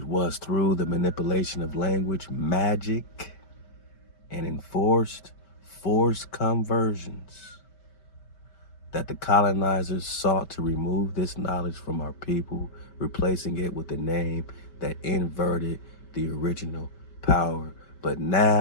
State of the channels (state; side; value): late; right; 5.2 ms